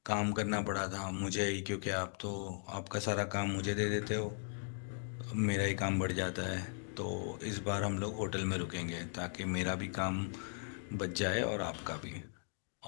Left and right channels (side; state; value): right; silent; digital silence